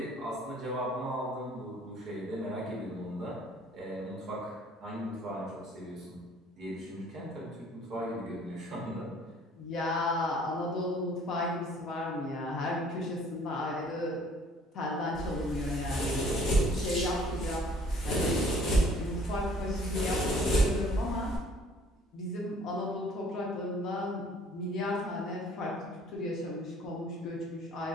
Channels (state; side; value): normal; both; correlation 0.57